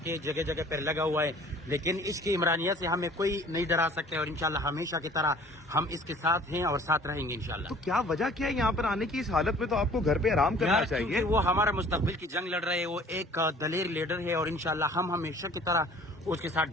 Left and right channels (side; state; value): both; normal; correlation 0.51